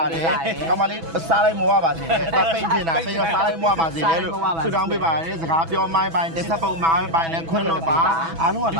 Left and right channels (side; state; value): left; late; 6.1 ms